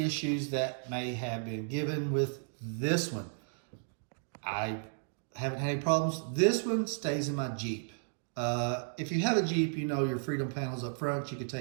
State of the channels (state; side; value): silent; left; digital silence